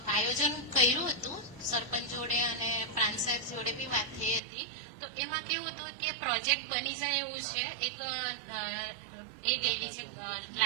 આયોજન કર્યું હતું સરપંચ જોડે અને પ્રાંત સાહેબ જોડે બી વાત થઈ હતી। તો એમાં કેવું હતું કે પ્રોજેક્ટ બની જાય એવું છે, એક એ ગયેલી છે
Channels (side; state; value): left; drops out; at 4.4 s